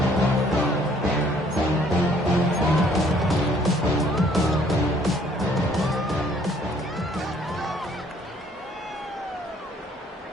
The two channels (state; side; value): normal; both; correlation 0.62